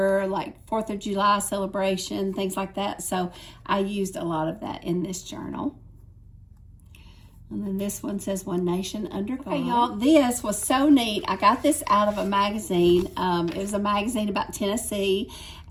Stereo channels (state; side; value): identical; both; correlation 1.00